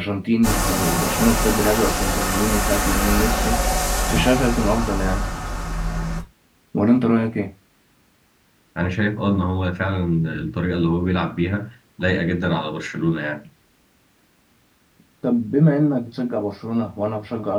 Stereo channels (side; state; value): both; identical; correlation 1.00